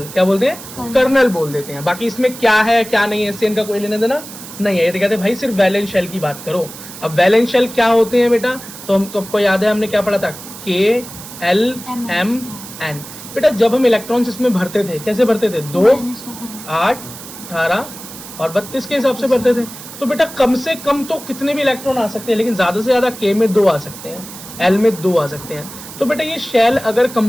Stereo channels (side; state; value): right; noise; hiss, 14 dB below the sound